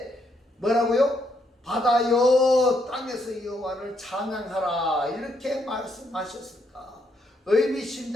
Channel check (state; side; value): normal; both; correlation 0.75